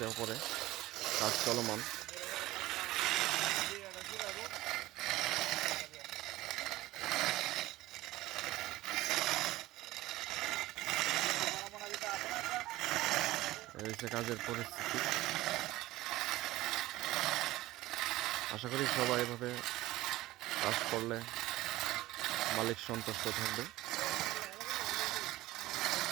ওপরে কাজ চলমান। এই হচ্ছে কাজের পরিস্থিতি। আশা করি সবাই এভাবে কাজ করলে মালিক সন্তুষ্ট থাকবে।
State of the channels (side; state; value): left; quieter; 17.4 dB